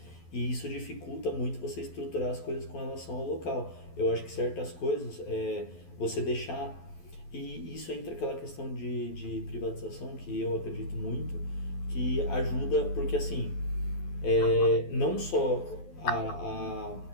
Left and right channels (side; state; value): right; late; 12 ms